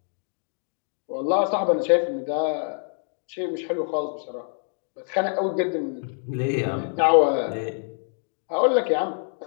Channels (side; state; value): right; silent; 61 dB below the other